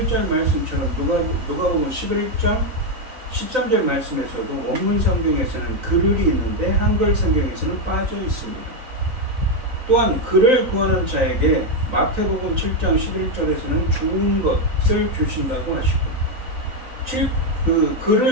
말씀처럼 누가복음 11장 13절 말씀에서도 원문 성경에서는 그를이 있는데 한글 성경에서는 빠져 있습니다. 또한 그를 구하는 자에게 마태복음 7장 11절에서는 좋은 것을 주신다고 하시고 그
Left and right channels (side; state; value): left; late; 3.9 ms